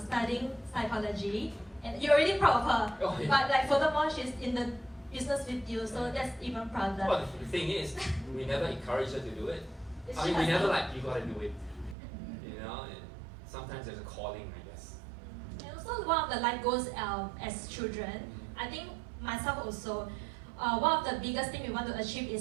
psychology, and you're already proud of her, oh, yeah. But like furthermore, she's in the business with you, so that's even prouder. Well, the thing is, we never encourage her to do it. It's we never you gotta do it. And sometimes there's a calling, I guess. And also one of the life goals as children, I think myself also, one of the biggest thing we want to achieve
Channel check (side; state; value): left; drops out; at 12.0 s